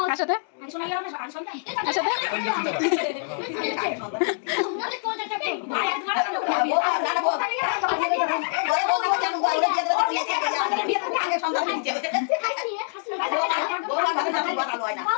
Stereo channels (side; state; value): right; silent; digital silence